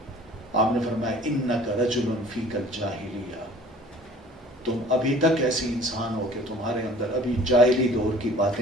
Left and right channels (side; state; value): both; normal; correlation 0.48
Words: آپ نے فرمایا انک رجل فیک الجاہلیہ، تم ابھی تک ایسی انسان ہو کہ تمہارے اندر ابھی جاہلی دور کی